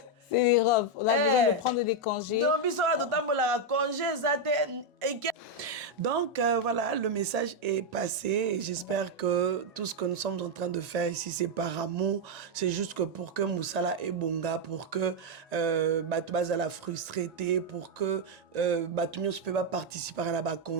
C'est l'Europe. On a besoin de prendre des congés. Donc, voilà, le message est passé et j'espère que tout ce que nous sommes en train de faire ici, c'est par amour. C'est juste que pour que Moussala et Bonga, pour que Batoubaza la frustrité, pour que Batoumio ne peut pas participer à la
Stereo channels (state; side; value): normal; both; correlation 0.01